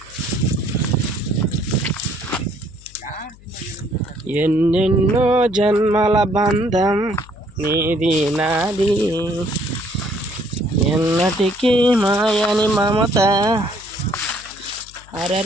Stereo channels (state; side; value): noise; left; hum, 23 dB below the sound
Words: ఎన్నెన్నో జన్మల బంధం నీది నాది, ఎన్నటికీ మాయని మమత.